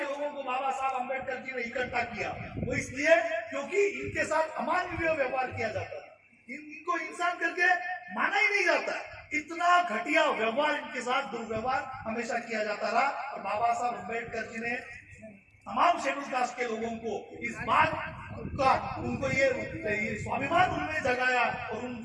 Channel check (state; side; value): identical; both; correlation 1.00